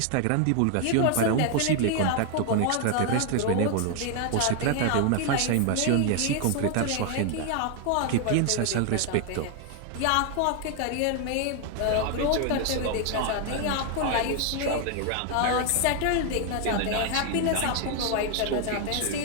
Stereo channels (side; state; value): both; different; correlation 0.00